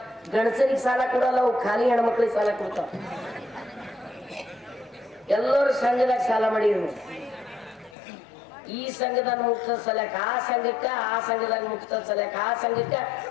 ಗಣಸರಿಗೆ ಸಾಲ ಕೊಡಲ್ಲ, ಅವು ಖಾಲಿ ಹೆಣ್ಮಕ್ಳಿಗೆ ಸಾಲ ಕೊಡ್ತಾವ. ಎಲ್ಲರೂ ಸಂಘದಾಗ ಸಾಲ ಮಾಡಿದ್ರು. ಈ ಸಂಘದಾಗ ಮುಕ್ತ ಸಲಕ ಆ ಸಂಘಕ್ಕೆ, ಆ ಸಂಘದಾಗ ಮುಕ್ತ ಸಲಕ ಆ ಸಂಘಕ್ಕೆ,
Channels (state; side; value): drops out; right; at 8.0 s